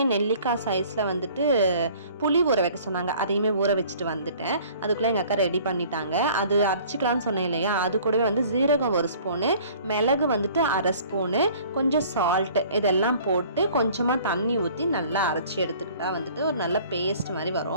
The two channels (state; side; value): inverted; both; correlation -0.51